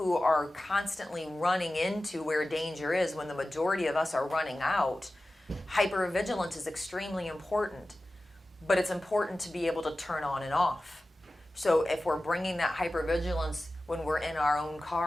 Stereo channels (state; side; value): normal; both; correlation 0.95